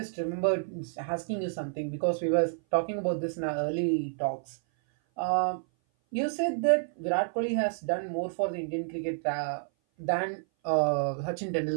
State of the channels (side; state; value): left; silent; 57 dB below the other